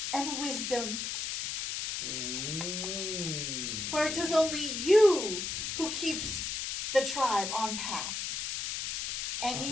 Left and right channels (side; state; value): left; noise; hiss, 3 dB below the sound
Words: and wisdom. For it is only you who keeps the tribe on path. And